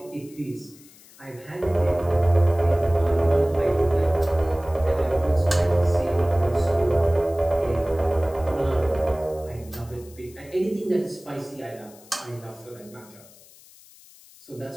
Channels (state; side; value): noise; left; hiss, 24 dB below the sound